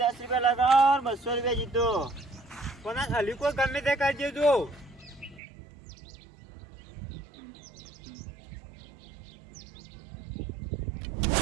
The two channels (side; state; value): left; drops out; at 5.4 s